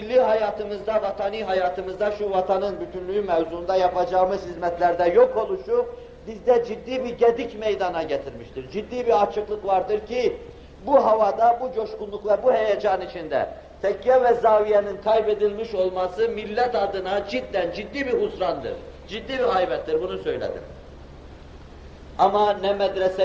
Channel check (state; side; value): identical; both; correlation 1.00